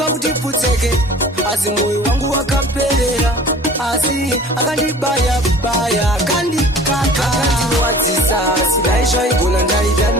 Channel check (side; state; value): both; normal; correlation 0.45